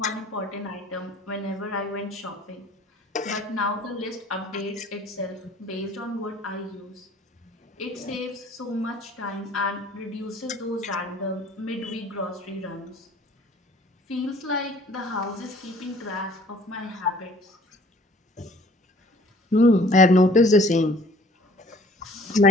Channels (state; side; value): normal; both; correlation 0.53